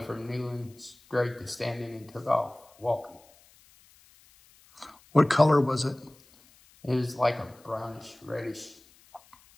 from kneeling straight to standing and took off walking. What color was it? It was like a brownish, reddish.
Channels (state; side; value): noise; left; hiss, 28 dB below the sound